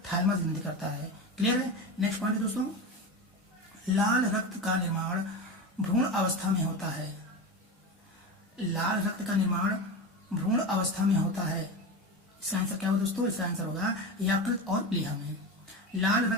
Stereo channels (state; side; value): normal; both; correlation 0.23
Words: ग्रंथि करता है। क्लियर है। नेक्स्ट पॉइंट है दोस्तों, लाल रक्त का निर्माण भ्रूण अवस्था में होता है। लाल रक्त का निर्माण भ्रूण अवस्था में होता है। इसका आंसर क्या होगा दोस्तों? इसका आंसर होगा यकृत और प्लीहा में। लाल